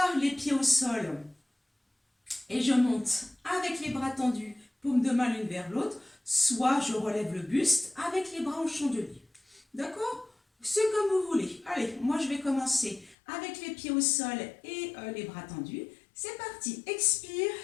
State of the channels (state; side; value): drops out; right; at 13.2 s